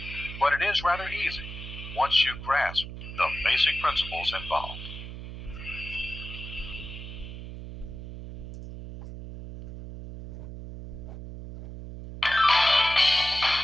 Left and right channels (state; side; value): noise; right; hum, 10 dB below the sound